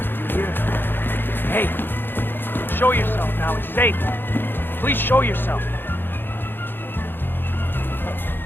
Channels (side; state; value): right; late; 0.099 ms